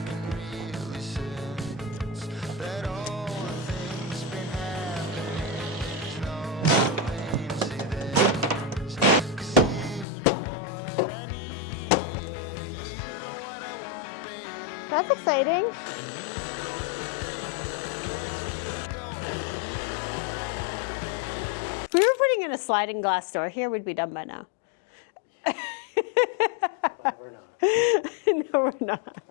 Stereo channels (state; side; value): drops out; right; at 10.1 s